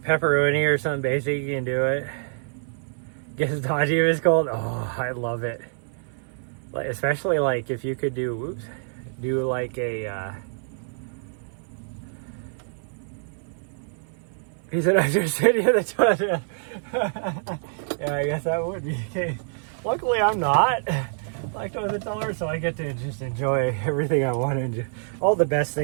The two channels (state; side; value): silent; left; 61 dB below the other